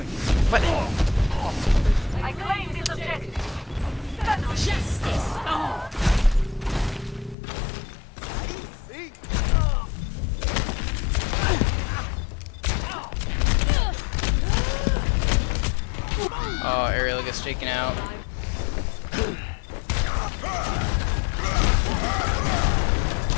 What? I claim this objective. Justice. Oh, Ariel gets taken out.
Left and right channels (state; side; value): drops out; right; at 7.4 s